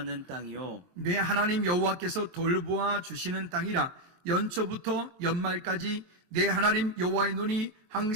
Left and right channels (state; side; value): late; left; 23 ms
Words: 땅이요 내 하나님 여호와께서 돌보아 주시는 땅이라. 연초부터 연말까지 내 하나님 여호와의 눈이